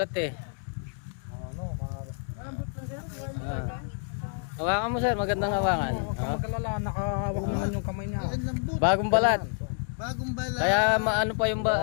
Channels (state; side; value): silent; right; 59 dB below the other